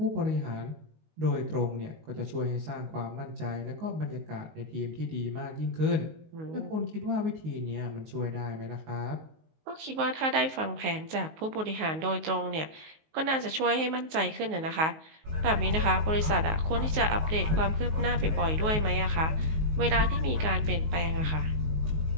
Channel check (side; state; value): left; late; 19 ms